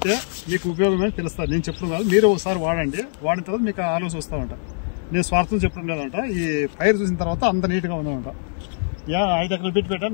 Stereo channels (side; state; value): right; silent; digital silence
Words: మీకు ఉపయోగమే తెలుస్తుంది. నేను చెప్పడం కాదు, మీరు ఒకసారి వాడండి. వాడిన తర్వాత మీకు ఆలోచన వస్తామంట. నేను స్వార్థం చెప్పడం లేదంట. ఈ పైరు చూసిన తర్వాత అంత నీట్గా ఉందన్నమాట. 5 ఎకరాలు బిట్